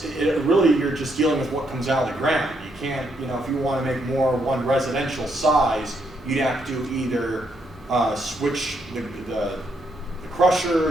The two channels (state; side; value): normal; both; correlation 0.76